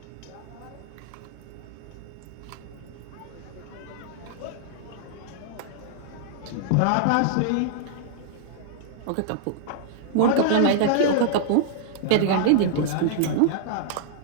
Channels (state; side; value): different; both; correlation -0.01